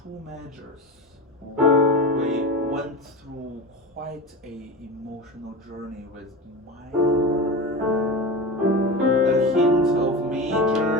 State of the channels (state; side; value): normal; both; correlation 0.25